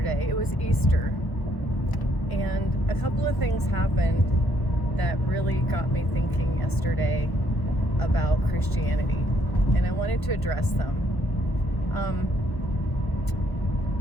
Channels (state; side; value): late; right; 1.1 ms